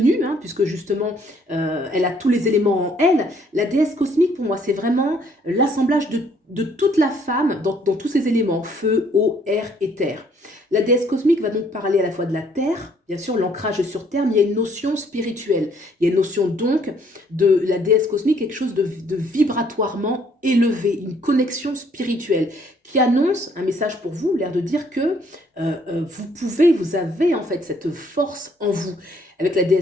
hein, puisque justement, elle a tous les éléments en elle. La déesse cosmique, pour moi, c'est vraiment l'assemblage de toute la femme dans tous ces éléments, feu, eau, air et terre. La déesse cosmique va donc parler à la fois de la terre, bien sûr l'ancrage sur terre, mais il y a une notion spirituelle. Il y a une notion donc de la déesse cosmique, quelque chose de vibratoirement élevé, une connexion spirituelle qui annonce un message pour vous, l'air de dire que vous avez en fait cette force en vous. Avec la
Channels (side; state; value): both; normal; correlation 0.64